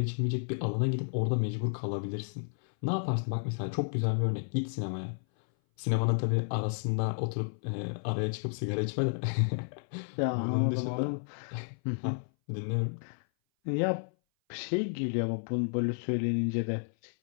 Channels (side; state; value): right; silent; 57 dB below the other